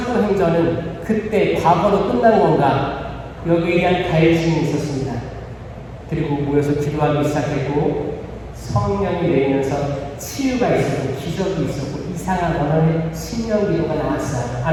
그때 과거로 끝난 건가 여기에 대한 갈증이 있었습니다. 그리고 모여서 기도하기 시작했고 성령이 내리면서 치유가 있었고 기적이 있었고 이상한 언어의 신령기도가 나왔어요.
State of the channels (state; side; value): identical; both; correlation 1.00